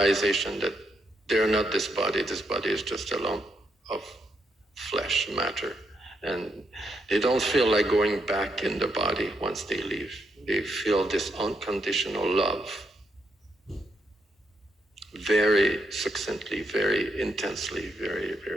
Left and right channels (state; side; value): normal; both; correlation 0.79